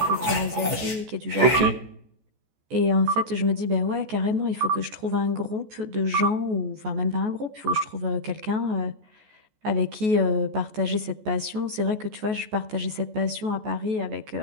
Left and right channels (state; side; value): late; left; 14 ms